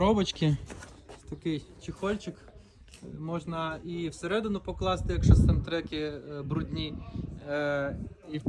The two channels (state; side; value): identical; both; correlation 1.00